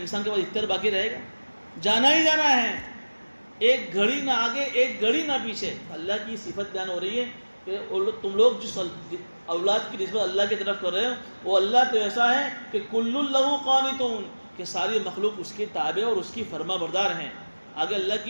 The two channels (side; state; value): both; inverted; correlation -1.00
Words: کے پاس اختیار باقی رہے گا؟ جانا ہی جانا ہے، ایک گھڑی نہ آگے ایک گھڑی نہ پیچھے۔ اللہ کی صفت بیان ہو رہی ہے کہ تم لوگ جس اولاد کی نسبت اللہ کی طرف کر رہے ہو، وہ اللہ تو ایسا ہے کہ کل لہ قانتون، کہ ساری مخلوق اس کے تابع اور اس کی فرما بردار ہیں۔ آگے اللہ